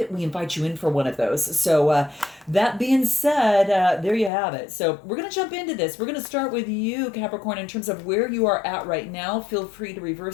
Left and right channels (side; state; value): right; drops out; at 4.3 s